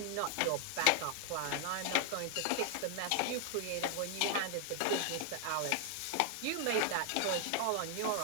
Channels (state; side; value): different; both; correlation 0.00